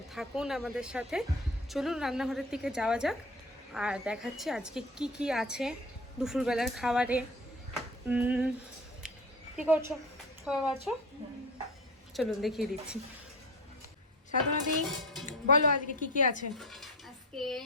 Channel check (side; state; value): both; normal; correlation 0.32